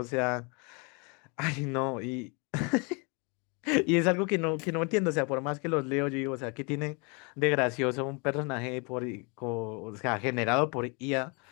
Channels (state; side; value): quieter; right; 32.4 dB